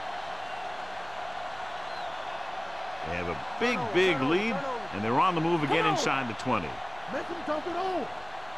They have a big lead, and they're on the move again inside the 20. Make him dump it on.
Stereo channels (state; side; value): noise; right; hum, 23 dB below the sound